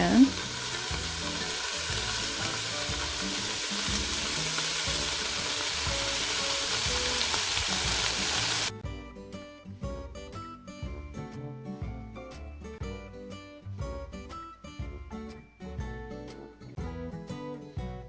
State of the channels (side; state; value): both; identical; correlation 1.00